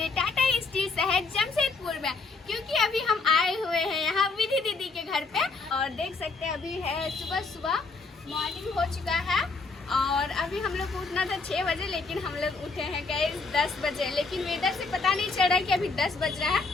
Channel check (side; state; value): right; quieter; 4.0 dB